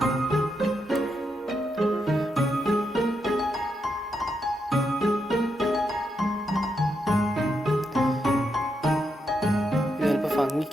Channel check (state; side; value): normal; both; correlation 0.82